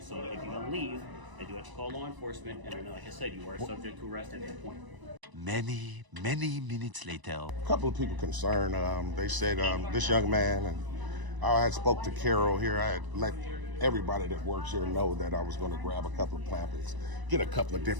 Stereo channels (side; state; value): left; late; 1.0 ms